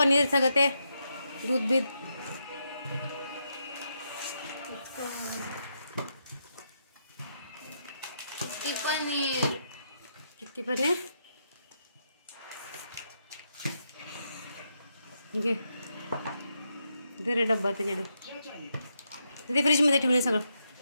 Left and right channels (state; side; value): inverted; both; correlation -0.82